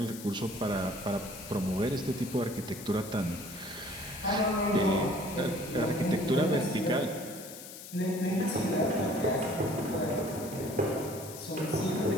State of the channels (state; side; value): noise; left; hiss, 13 dB below the sound